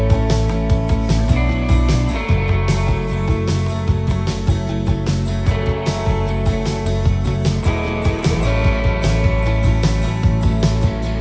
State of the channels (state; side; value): identical; both; correlation 1.00